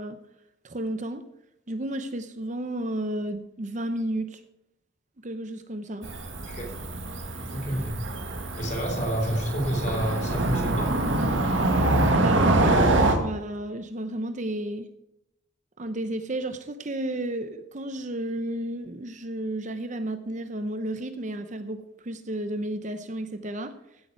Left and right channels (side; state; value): both; normal; correlation 0.41